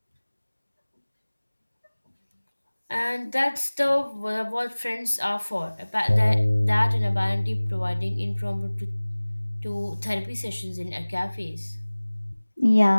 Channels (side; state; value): both; inverted; correlation -1.00